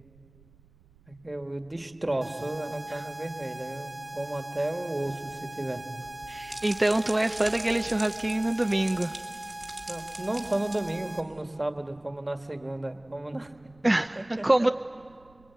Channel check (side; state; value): right; noise; rumble, 28 dB below the sound